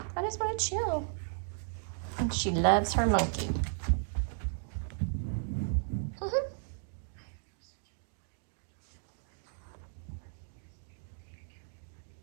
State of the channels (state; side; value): silent; left; digital silence